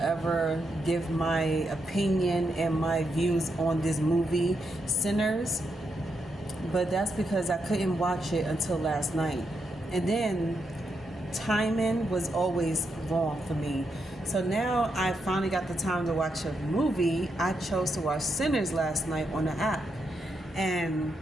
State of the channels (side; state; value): both; normal; correlation 0.82